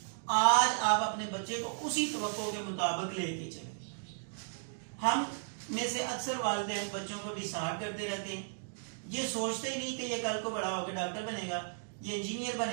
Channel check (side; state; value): left; silent; digital silence